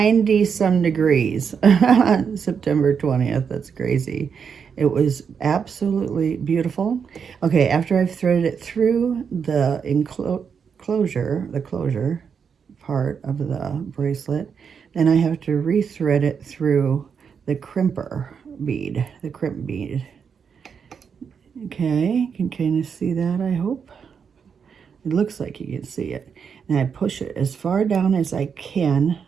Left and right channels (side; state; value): left; quieter; 6.6 dB